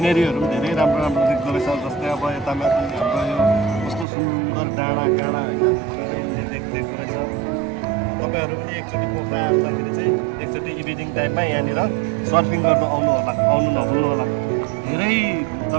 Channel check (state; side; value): drops out; left; at 4.0 s